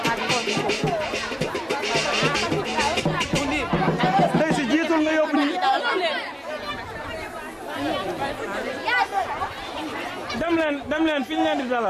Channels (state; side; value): identical; both; correlation 1.00